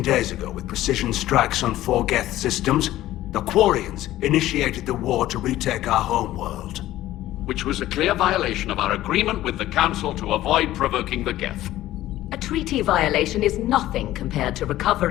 days ago, with precision strikes on 4 Geth systems, the Quarians initiated the war to retake our homeworld. Which was a clear violation of our agreement with the Council to avoid provoking the Geth. A treaty violation is nothing compared to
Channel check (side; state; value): right; quieter; 14.7 dB